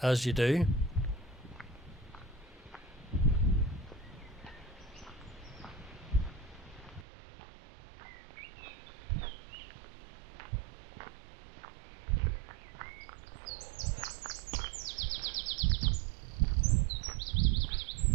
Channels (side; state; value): left; drops out; at 7.1 s